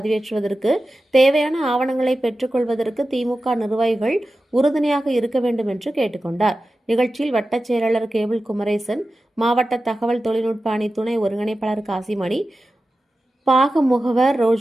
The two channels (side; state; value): both; normal; correlation 0.94